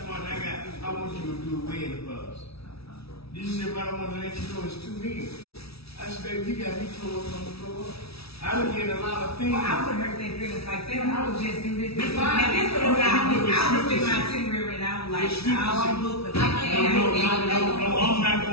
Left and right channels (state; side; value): late; right; 0.77 ms